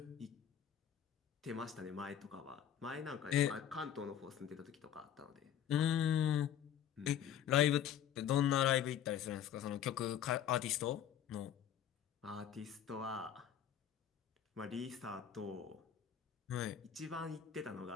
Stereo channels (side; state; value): right; quieter; 9.7 dB